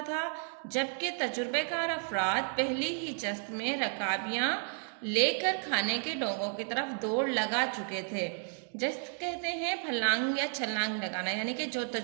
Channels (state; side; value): silent; left; 56 dB below the other